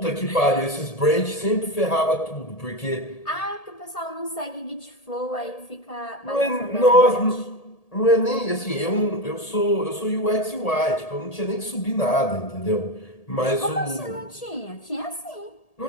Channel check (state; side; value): late; right; 1.8 ms